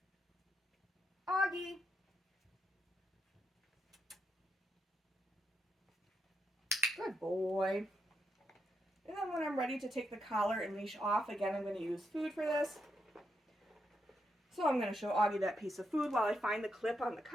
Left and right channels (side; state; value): both; normal; correlation 0.81